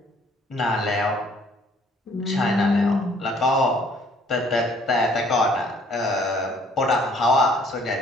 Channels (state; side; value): normal; both; correlation 0.60